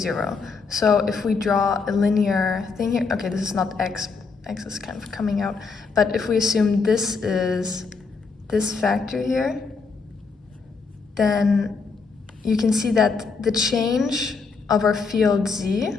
So if we draw a linear thing here, okay, this is not x, x is kind of coming out, but if we assume this is this factor here, then you can see that the change of our field z,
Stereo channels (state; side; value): quieter; right; 4.8 dB